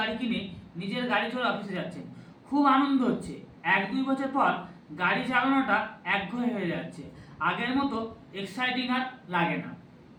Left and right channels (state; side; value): identical; both; correlation 1.00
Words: কিনে নিজের গাড়ি চড়ে অফিসে যাচ্ছেন। খুব আনন্দ হচ্ছে। 1-2 বছর পর গাড়ি চালানোটা একঘেয়ে হয়ে যাচ্ছে, আগের মতো এক্সাইটিং আর লাগে না।